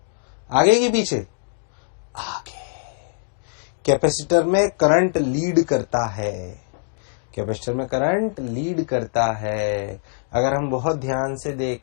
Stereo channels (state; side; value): silent; right; digital silence